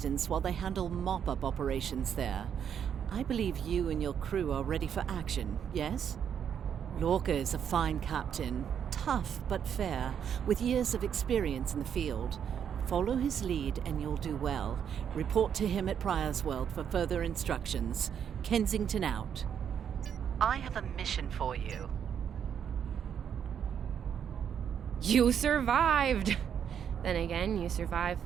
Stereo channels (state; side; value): quieter; left; 8.3 dB